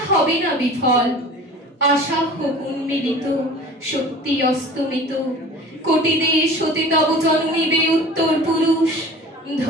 হবে না বিফল। আশা হোক উন্মিলিত, শক্তি অস্তমিত, কোটি দেশ হতে তব জন্মিবে উত্তর পুরুষ।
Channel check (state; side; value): normal; both; correlation 0.42